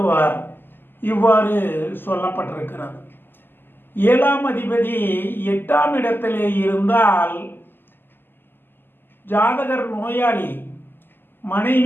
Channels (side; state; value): right; late; 0.096 ms